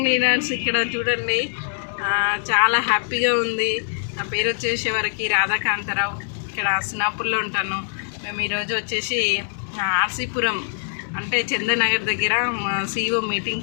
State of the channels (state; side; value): silent; right; digital silence